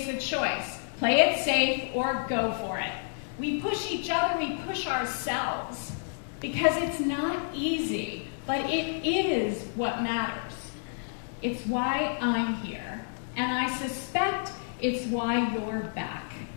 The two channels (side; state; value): right; silent; digital silence